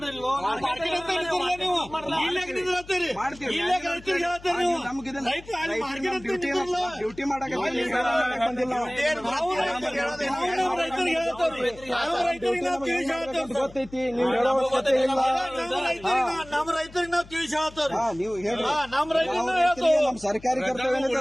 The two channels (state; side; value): noise; left; hum, 20 dB below the sound